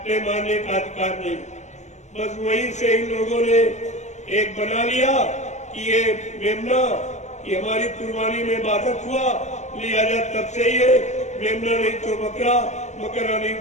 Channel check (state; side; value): late; right; 0.34 ms